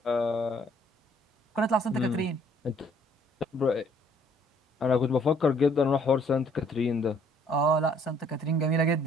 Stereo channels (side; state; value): both; normal; correlation 0.62